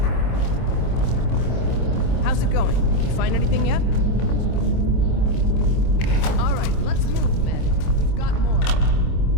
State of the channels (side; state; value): right; late; 26 ms